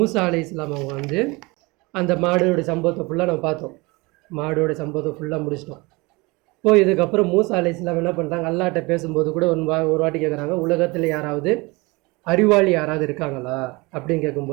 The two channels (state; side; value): quieter; left; 24.8 dB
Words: அலைஹிஸ்ஸலாம் அவங்க அந்த மாடோடைய சம்பவத்தை ஃபுல்லாக நம்ம பார்த்தோம். மாடோடைய சம்பவத்தை ஃபுல்லாக முடிச்சிட்டோம். இப்போ இதுக்கப்புறம் மூசா அலைஹிஸ்ஸலாம் என்ன பண்ணுறாங்க, அல்லாஹ்ட்ட பேசும்போது கூட ஒரு வாட்டி கேட்குறாங்க, உலகத்தில் யாராவது அறிவாளி யாராவது இருக்காங்களா அப்படின்னு